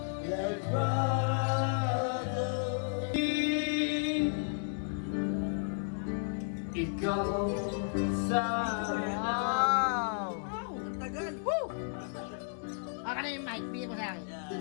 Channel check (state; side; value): silent; right; digital silence